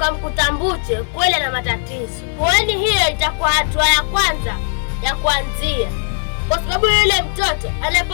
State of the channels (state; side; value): silent; right; 66 dB below the other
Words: Mbuche kweli na matatizo, kwani hiyo itakuwa hatua ya kwanza ya kuanzia, kwa sababu yule mtoto